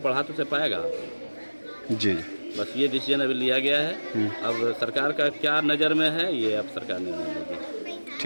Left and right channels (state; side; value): inverted; both; correlation -1.00